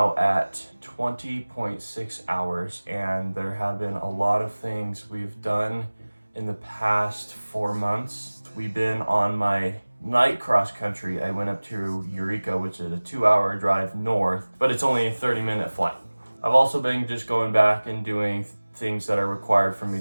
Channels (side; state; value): both; inverted; correlation -1.00